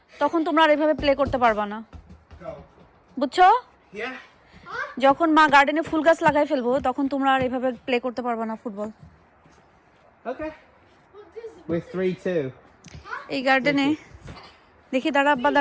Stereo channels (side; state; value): both; identical; correlation 1.00